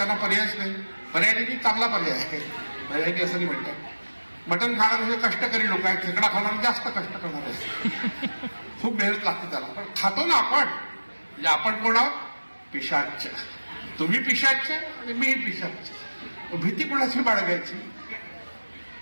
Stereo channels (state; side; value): inverted; both; correlation -1.00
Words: पर्यायच नाही. पर्यायी चांगला पर्याय आहे, पर्यायी असं नाही म्हणतात. मटण खाणारे कष्टकरी लोक आहेत, खेकडा खाणारे जास्त कष्ट करणार आहेत. खूप मेहनत लागते त्याला, पण खातो ना आपण. म्हणजे आपण कोण आहोत? पिशाच. तुम्ही पिशाच आणि मीही पिशाच. भीती कोणाची बाळगायची?